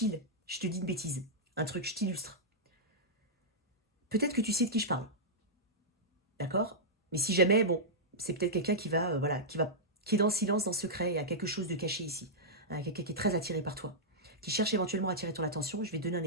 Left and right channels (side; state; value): both; normal; correlation -0.11